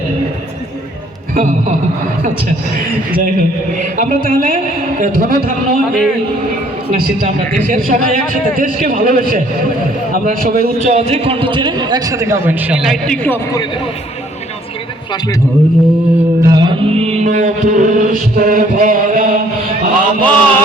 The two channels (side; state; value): both; normal; correlation 0.61